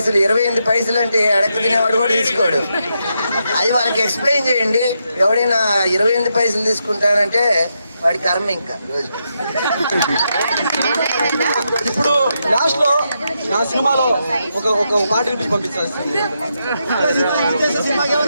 28 పైసలు అంటే అడక్క తినేవాడు కూడా తీసుకోడు. అది వాళ్ళకి ఎక్స్ప్లెయిన్ చేయండి. ఎవడైనా 28 పైసలు తీసుకుంటానంటే వాడి కర్మ ఇంకా రోజుకి. ఇప్పుడు లాస్ట్ లో నా సినిమాలో ఒక పాట వినిపించి పంపించాలి. సినిమాకి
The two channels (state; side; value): inverted; both; correlation -0.83